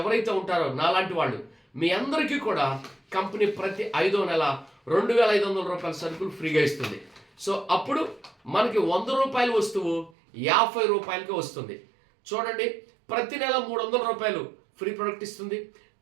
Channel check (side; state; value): left; drops out; at 10.1 s